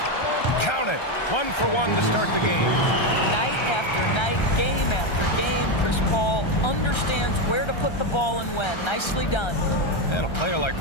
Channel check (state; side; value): late; right; 1.3 ms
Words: Count it. 1 for 1 to start the game. Night after night, game after game, Chris Paul understands where to put the ball and when. Nicely done. And a player like